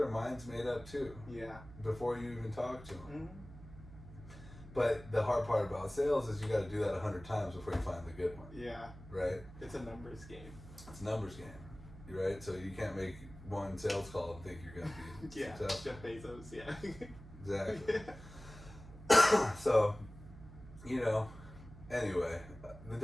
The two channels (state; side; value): noise; right; hum, 16 dB below the sound